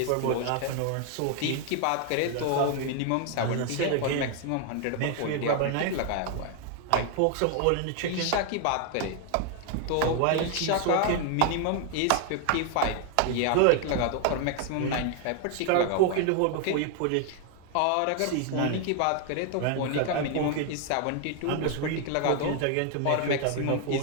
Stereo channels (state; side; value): different; both; correlation 0.01